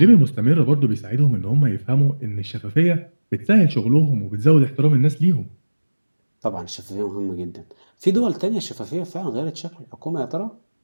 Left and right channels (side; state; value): both; inverted; correlation -1.00